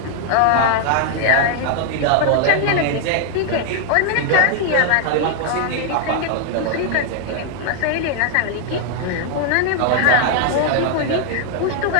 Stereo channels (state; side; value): different; both; correlation 0.00